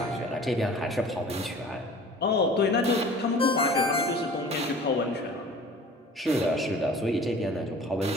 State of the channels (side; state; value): both; normal; correlation 0.44